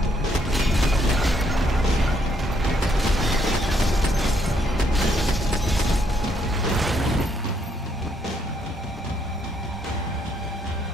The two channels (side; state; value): both; normal; correlation 0.72